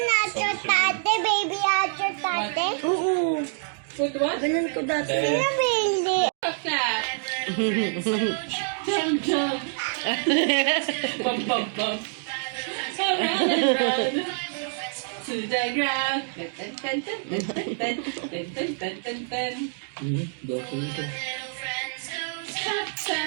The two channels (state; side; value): silent; left; digital silence